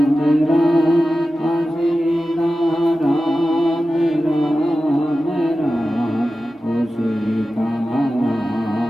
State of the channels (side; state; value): both; normal; correlation 0.94